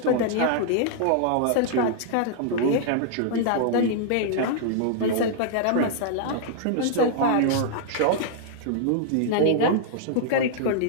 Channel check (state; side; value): different; both; correlation -0.01